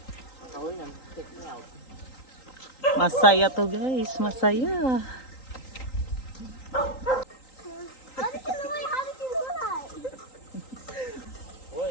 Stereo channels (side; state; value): right; late; 3.9 ms